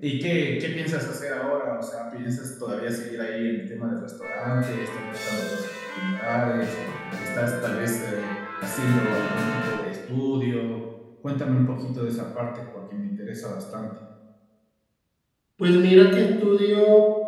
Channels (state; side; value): identical; both; correlation 1.00